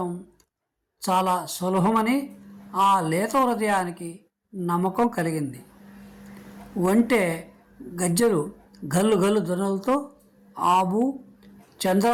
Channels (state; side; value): identical; both; correlation 1.00